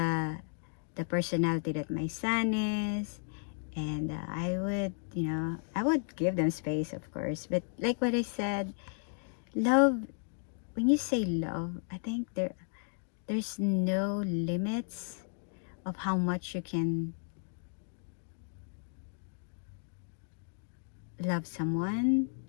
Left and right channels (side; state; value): right; silent; 55 dB below the other